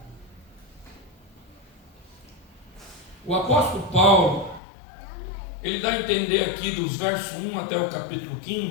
O apóstolo Paulo, ele dá a entender aqui dos versos 1 até o capítulo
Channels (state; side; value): drops out; right; at 4.6 s